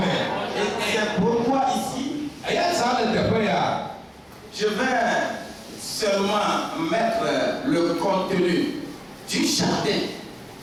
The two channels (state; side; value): identical; both; correlation 1.00